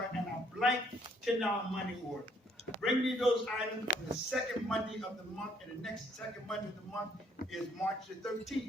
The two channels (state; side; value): normal; both; correlation 0.66